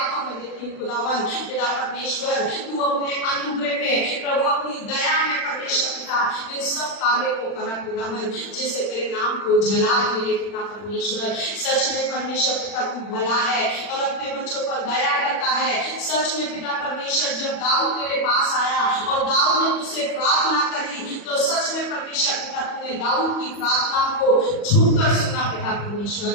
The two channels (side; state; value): right; late; 40 ms